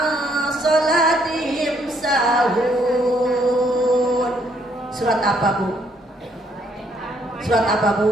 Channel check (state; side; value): normal; both; correlation 0.69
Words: salatihim sahun. Surat apa Bu? Surat apa